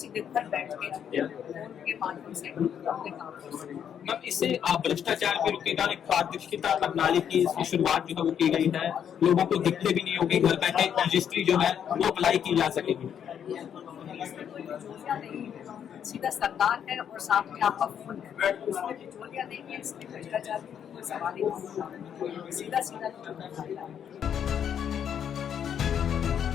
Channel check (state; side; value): quieter; right; 8.7 dB